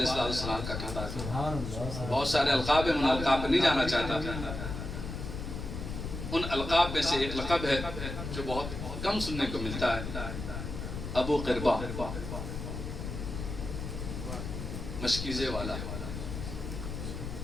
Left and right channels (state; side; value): noise; left; rumble, 6 dB below the sound